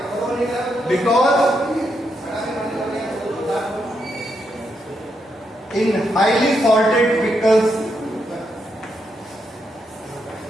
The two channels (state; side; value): normal; both; correlation 0.81